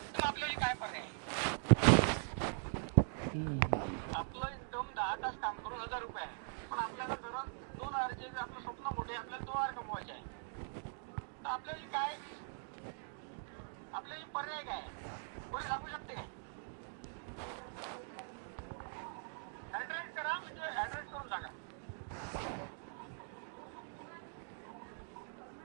तर आपल्याला काय पर्याय आहे? आपलं इन्कम 10 तास काम करून 1000 रुपये आहे, पण आपल्याला गरज 2000चे, आपलं स्वप्न मोठे, आपल्याला 2000 कमवायचे आहे. तर आपल्याला काय, आपल्याला पर्याय काय आहे? कोणी सांगू शकते काय? ऍड्रेस करा, म्हणजे ऍड्रेस करून सांगा.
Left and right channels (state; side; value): silent; left; digital silence